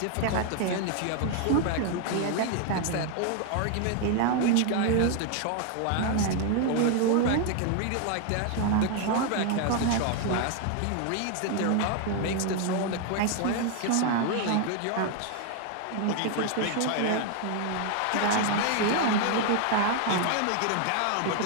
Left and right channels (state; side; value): different; both; correlation 0.00